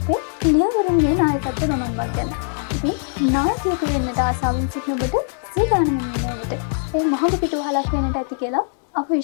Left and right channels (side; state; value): right; silent; 65 dB below the other